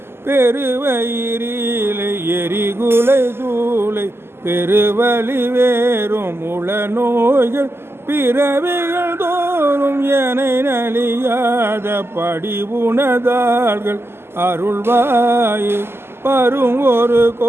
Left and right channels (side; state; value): left; late; 0.12 ms